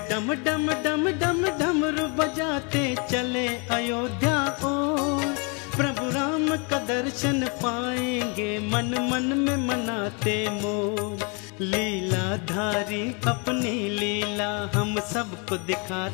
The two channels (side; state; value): right; quieter; 33.9 dB